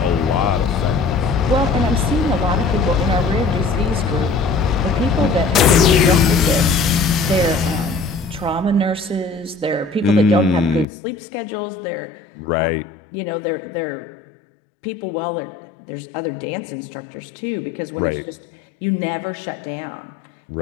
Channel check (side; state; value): right; drops out; at 10.9 s